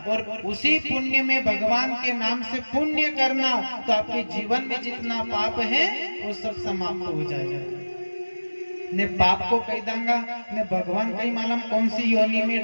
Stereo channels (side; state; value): both; inverted; correlation -1.00